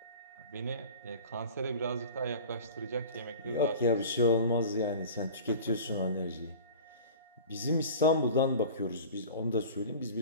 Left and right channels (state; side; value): inverted; both; correlation -0.39